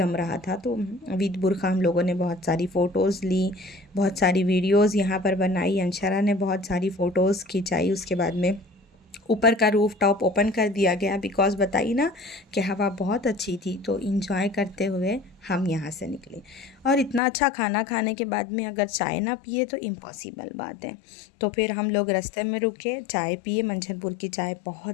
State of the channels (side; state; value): right; drops out; at 17.2 s